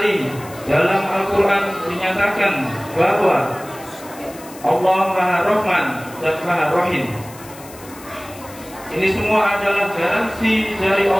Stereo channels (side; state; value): left; noise; hiss, 19 dB below the sound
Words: dalam Al-Quran dinyatakan bahwa Allah maha Rahman dan maha Rahim. Ini semua adalah garansi dari